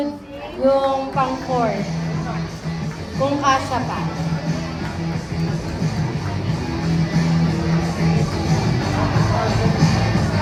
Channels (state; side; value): identical; both; correlation 1.00